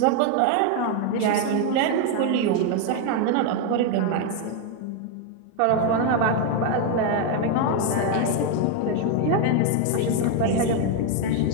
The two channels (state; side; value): different; both; correlation 0.01